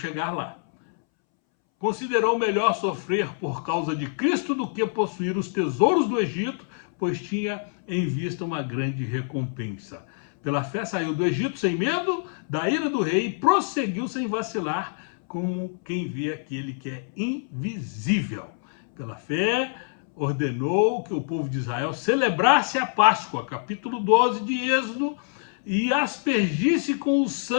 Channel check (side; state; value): right; silent; 61 dB below the other